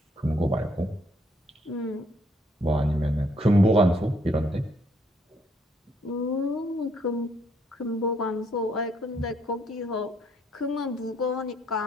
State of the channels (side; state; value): both; normal; correlation 0.68